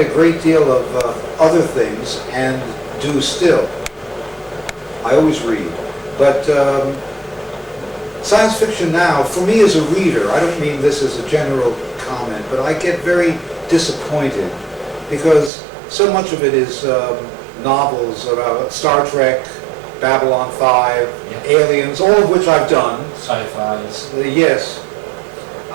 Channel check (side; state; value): left; drops out; at 15.5 s